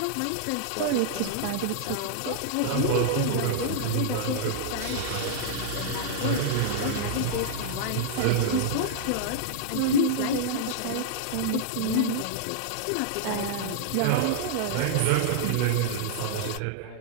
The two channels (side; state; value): both; different; correlation -0.01